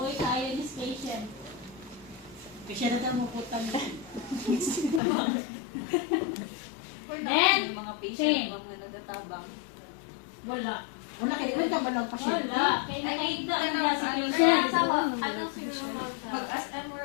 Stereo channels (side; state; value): right; drops out; at 5.0 s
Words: tayo ni patient. Siya na tayo maputan. Then, mga same. patient, mga nagatabang. Wala. Wala, kailan ka ba lang Wala. Kaya nakita ko na si Ano patient. siguro mag-SM